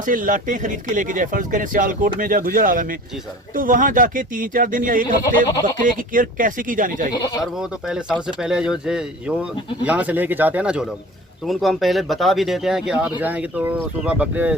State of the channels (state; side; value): normal; both; correlation 0.42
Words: से लाटें खरीद के लेके जाए, फर्ज करें सियालकोट में या गुजरांवाला में, जी सर, तो वहाँ जाके 3-4 दिन या एक हफ्ते बकरे की केयर कैसे की जानी चाहिए? सर वो तो पहले सबसे पहले जो यहाँ से लेके जाते हैं ना जो लोग, तो उनको हम पहले बता भी देते हैं कि आप जाएंगे तो सुबह बकरे